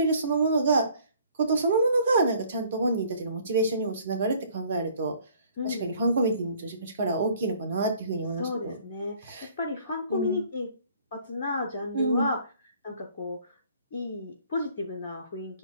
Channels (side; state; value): both; inverted; correlation -0.57